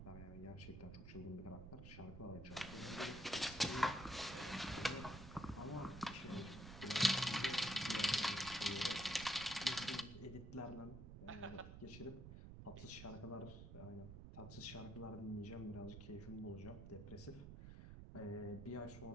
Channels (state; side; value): noise; right; rumble, 11 dB below the sound